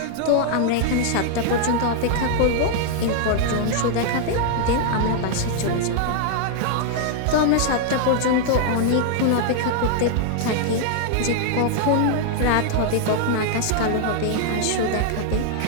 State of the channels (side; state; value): both; different; correlation 0.00